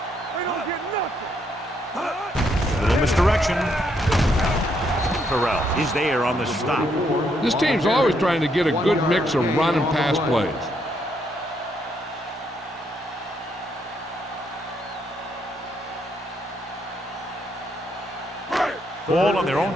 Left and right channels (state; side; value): normal; both; correlation 0.75